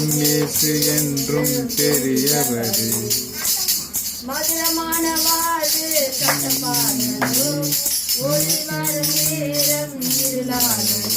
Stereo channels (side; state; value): both; identical; correlation 1.00